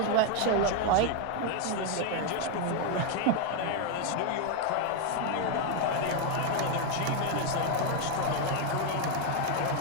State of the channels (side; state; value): both; different; correlation 0.01